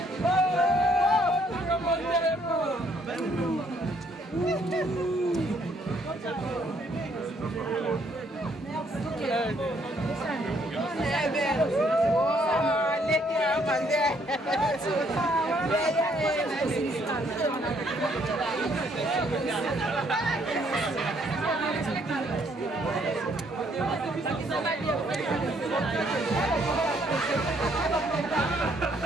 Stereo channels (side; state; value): both; normal; correlation 0.68